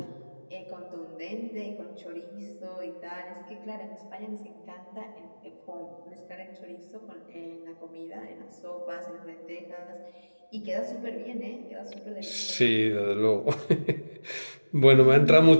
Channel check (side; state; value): both; inverted; correlation -1.00